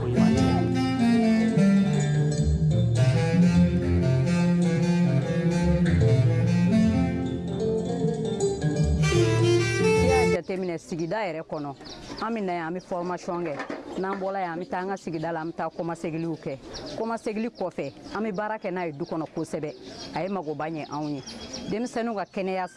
ɲuman tɛ. jateminɛ sigida yɛrɛ kɔnɔ an bɛ na yan an bɛ formation kɛ n'an bɔra yan an bɛ taa an ka sigida la an bɛ taa kɔmasegiliw kɛ kɔmasegili kɔfɛ an bɛ baara kɛ n'a ye du kɔnɔ kosɛbɛ a ye magoba ɲɛ anw ye denmisɛnninw ka kɛnɛya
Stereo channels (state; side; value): identical; both; correlation 1.00